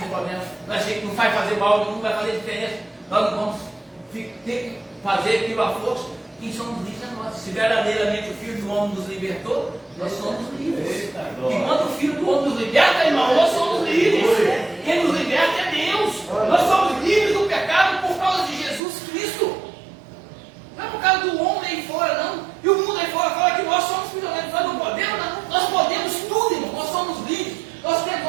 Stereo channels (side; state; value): left; drops out; at 18.8 s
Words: problema. Nós achamos que não vai fazer mal, não vai fazer diferença. Nós não vamos ter que fazer aquilo à força. Quem somos livres é nós. Se verdadeiramente o Filho do Homem nos libertou, nós somos livres. E quando o Filho do Homem nos liberta, irmão, nós somos livres. Quem nos liberta é Deus. Nós somos livres do pecado por causa de Jesus Cristo. Não é por causa do homem aí fora, não. E o mundo aí fora fala que nós somos prisioneiros. Nós não podemos, não. Nós podemos tudo, irmão. Nós somos livres. Nós